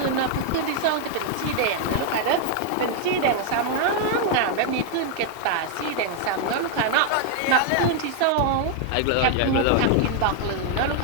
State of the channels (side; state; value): both; different; correlation 0.00